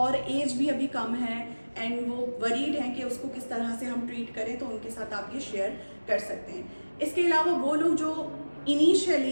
एज भी अभी कम है एंड वो वरीड हैं कि उसको किस तरह से हम ट्रीट करें, तो उनके साथ आप ये शेयर कर सकते हैं। इसके अलावा वो लोग जो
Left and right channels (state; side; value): inverted; both; correlation -1.00